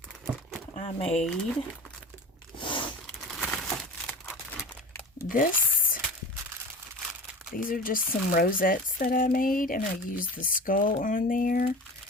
I made this. These are just some rosettes that I made, and I used the skull on there.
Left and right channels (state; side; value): normal; both; correlation 0.35